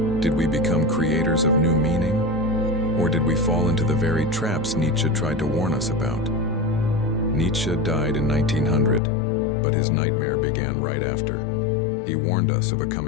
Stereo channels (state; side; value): drops out; right; at 9.0 s